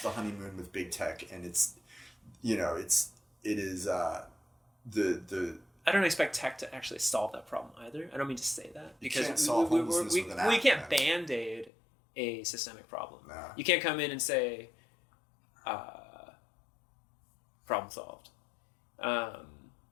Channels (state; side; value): drops out; right; at 11.7 s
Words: the honeymoon with big tech, and it's it is the. I don't expect tech to actually solve that problem either. I don't mean to say that because you can't solve homelessness with an app. We can't band-aid a systemic problem. No. You can't come in and say, problem solved.